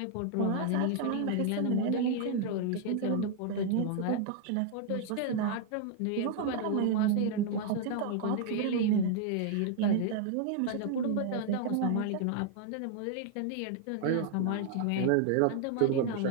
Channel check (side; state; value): both; different; correlation 0.00